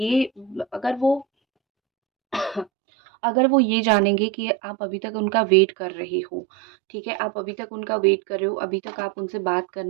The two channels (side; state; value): left; drops out; at 2.7 s